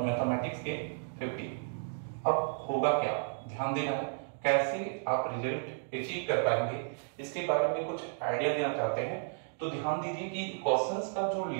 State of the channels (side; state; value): left; silent; digital silence